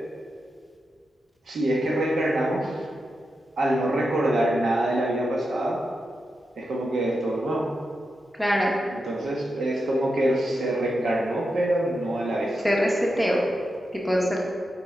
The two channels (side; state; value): both; normal; correlation 0.88